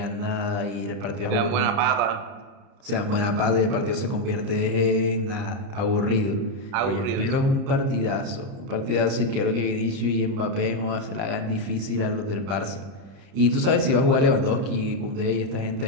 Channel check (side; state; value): left; late; 30 ms